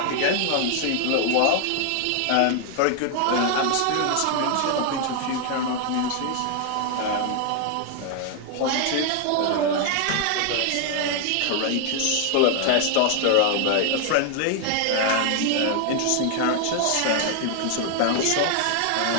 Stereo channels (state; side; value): different; both; correlation 0.00